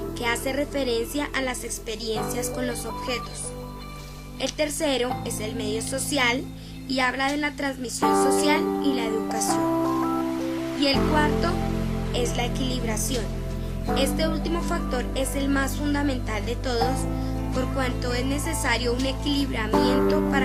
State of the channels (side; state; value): both; identical; correlation 1.00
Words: que hace referencia a las experiencias con los objetos. El tercero es el medio social y habla de la transmisión social y la educación. Y el cuarto es la equilibración. Este último factor es el más fundamental de todos, por cuanto es necesario un equilibramiento